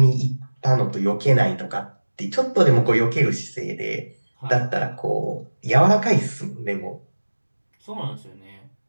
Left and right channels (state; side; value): inverted; both; correlation -1.00